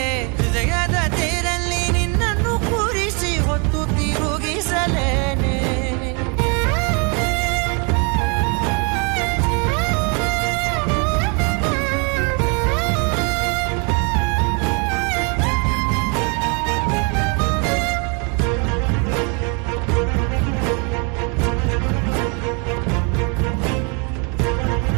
ಹೃದಯದ ತೇರಲ್ಲಿ ನಿನ್ನನ್ನು ಕೂರಿಸಿ ಹೊತ್ತು ತಿರುಗಿಸಲೇನೆ.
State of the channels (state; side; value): quieter; left; 34.6 dB